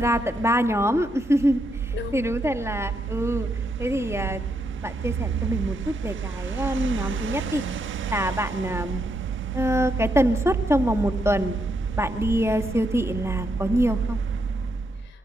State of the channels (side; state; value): both; normal; correlation 0.79